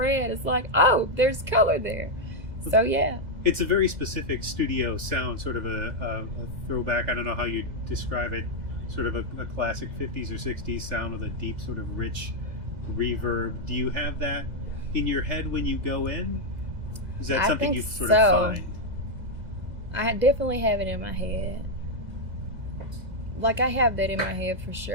it's like, oh, there's color there. So yeah. It's a very specific studio sound, sort of a throwback, I don't know how you describe it, sort of a classic 50s or 60s sound with a deep sort of rich reverb. Do you have that in your head when you go in? Is that something you sort of find? I definitely have it in my head. Like, I have that in my head for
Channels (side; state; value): left; late; 2.0 ms